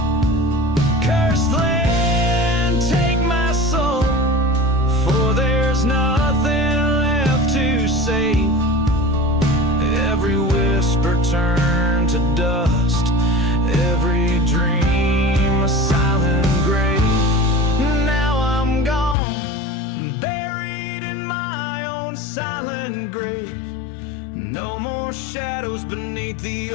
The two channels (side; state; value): right; drops out; at 19.2 s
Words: Cursed land, take my soul, for there's nothing left to save. Every whisper turned to dust, every dream a silent grave. Now I'm gone, buried in my own silent grave. No more shadows beneath the